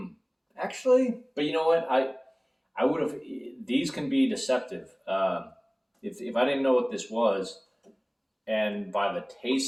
Actually, but you know what? I would have. These can be deceptive. If I didn't know what this was, and by the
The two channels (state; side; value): identical; both; correlation 1.00